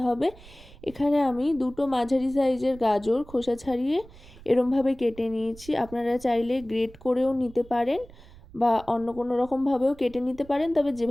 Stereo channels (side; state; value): right; noise; rumble, 21 dB below the sound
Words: হবে। এখানে আমি দুটো মাঝারি সাইজের গাজর খোসা ছাড়িয়ে এরমভাবে কেটে নিয়েছি। আপনারা চাইলে গ্রেট করেও নিতে পারেন বা অন্য কোনো রকমভাবেও কেটে নিতে পারেন, তবে